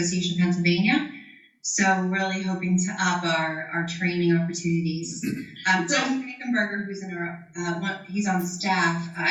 of Pennsylvania. So we're really hoping to up our training opportunities. Tom Frankenberger, who's he's on staff. I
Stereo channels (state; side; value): identical; both; correlation 1.00